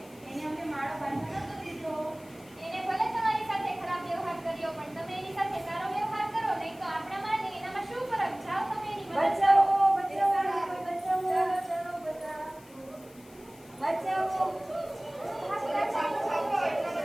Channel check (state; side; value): noise; left; hiss, 25 dB below the sound